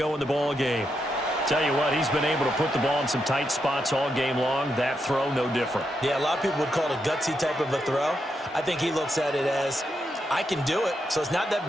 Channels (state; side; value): normal; both; correlation 0.83